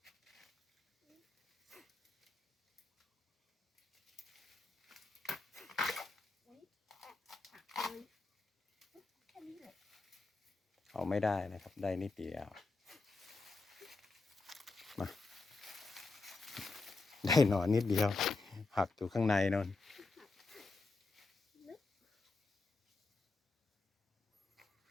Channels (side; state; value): right; quieter; 3.6 dB